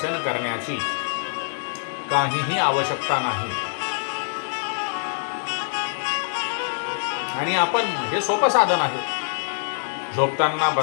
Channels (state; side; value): silent; right; digital silence